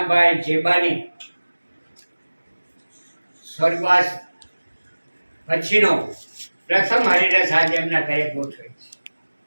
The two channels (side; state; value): both; inverted; correlation -1.00